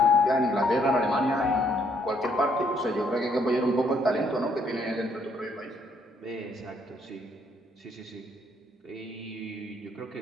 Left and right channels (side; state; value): both; normal; correlation 0.69